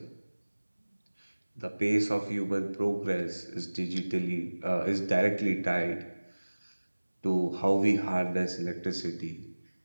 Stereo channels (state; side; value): inverted; both; correlation -1.00